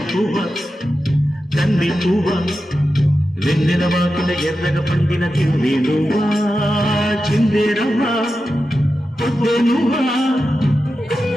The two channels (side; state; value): both; normal; correlation 0.91